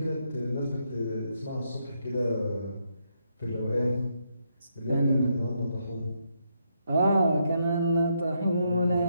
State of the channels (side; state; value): both; inverted; correlation -0.79